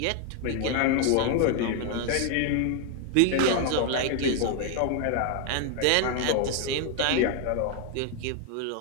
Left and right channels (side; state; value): both; different; correlation 0.00